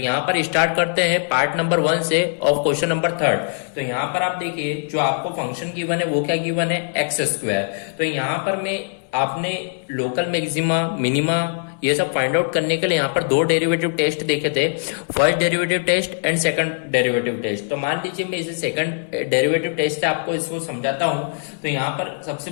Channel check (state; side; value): silent; right; 64 dB below the other